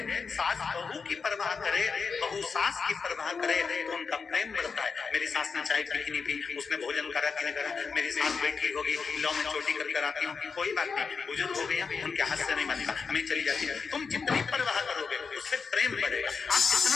सास बहू की परवाह करे, बहू सास की परवाह करे तो उनका प्रेम बढ़ता है। मेरी सास ने चाय पी कि नहीं पी, उसने भोजन करा कि नहीं करा, मेरी सास बैठी होगी, लो मैं चोटी कर आती हूँ, कोई बात नहीं, बुजुर्ग हो गए, उनके हाथ से नहीं बनता, मैं चली जाती हूँ। तुम जितनी परवाह करोगे उससे प्रेम बढ़ेगा। आप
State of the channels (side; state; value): right; quieter; 5.2 dB